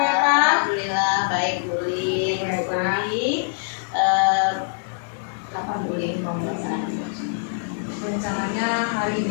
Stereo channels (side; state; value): right; silent; 63 dB below the other